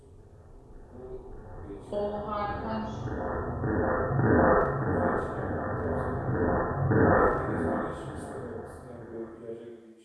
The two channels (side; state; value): both; identical; correlation 1.00